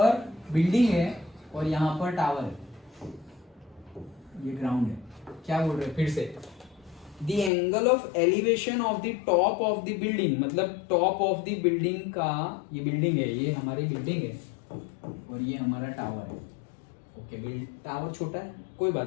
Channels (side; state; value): right; drops out; at 7.5 s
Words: बिल्डिंग है और यहाँ पर टावर है. ये ग्राउंड है. क्या बोल रहे हैं फिर से. The angle of elevation of the top of the building मतलब टॉप ऑफ द बिल्डिंग का. ये बिल्डिंग है. ये हमारी बिल्डिंग है और ये हमारा टावर है. ओके टावर छोटा है कोई